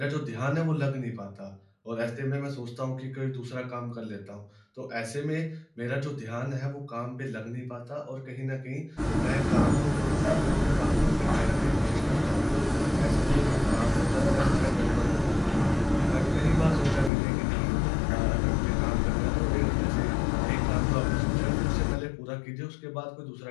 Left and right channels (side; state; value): right; drops out; at 17.1 s